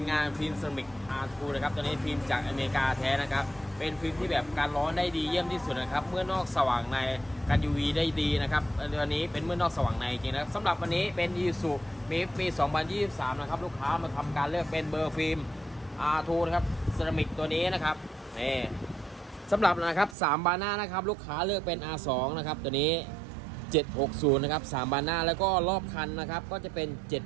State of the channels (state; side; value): drops out; left; at 20.2 s